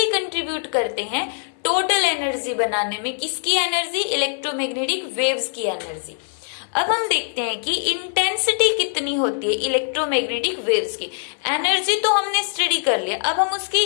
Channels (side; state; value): right; silent; 57 dB below the other